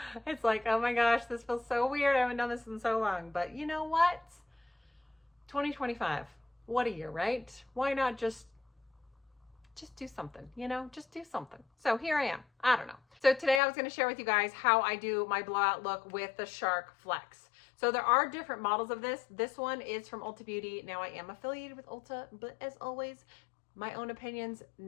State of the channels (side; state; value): right; drops out; at 13.6 s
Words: It's like, oh my gosh, this feels so weird. I haven't done this in so long. But you know what? 2025. What a year, right? Why not just do something, just do something. So here I am. I don't know. So today I was going to share with you guys how I do my blowout look with the Shark Flex. So there are different models of this. This one is from Ulta Beauty. Now I am affiliated with Ulta, but as always, my own opinions,